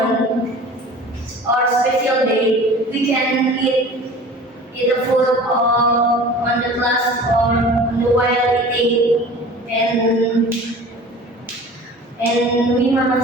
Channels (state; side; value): normal; both; correlation 0.42